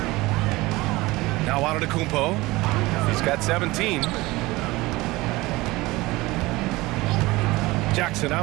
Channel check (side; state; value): left; quieter; 20.7 dB